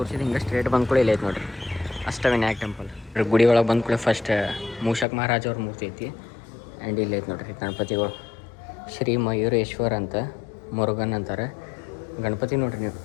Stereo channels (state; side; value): drops out; right; at 5.1 s